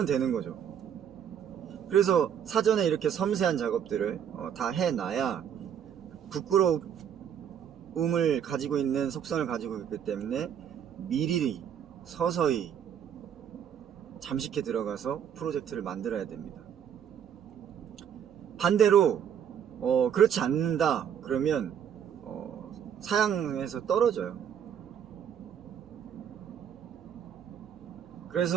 되는 거죠. 그래서 사전에 이렇게 섬세한 작업들을 다 해놔야 부끄러움을 가지고 있는 속성을 가지고 있기 때문에 미리 서서히 잠식해 들어가서 프로젝트를 만들어야 됩니다. 반대로 그렇지 않는다 그러면 사양에서 떨어져요.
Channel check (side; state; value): left; quieter; 8.6 dB